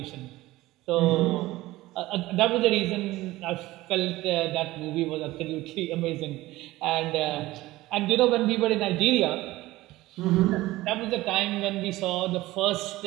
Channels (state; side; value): quieter; left; 17.8 dB